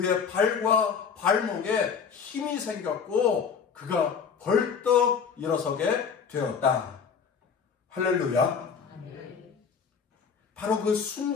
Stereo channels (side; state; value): right; quieter; 6.4 dB